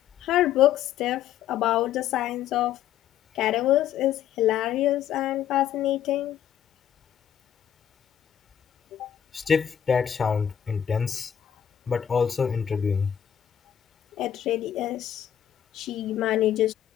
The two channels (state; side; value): quieter; right; 9.9 dB